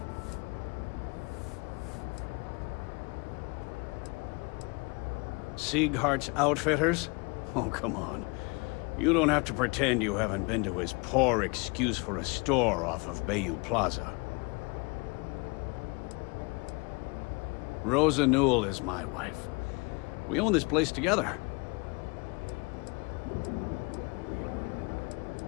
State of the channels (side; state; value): right; quieter; 29.3 dB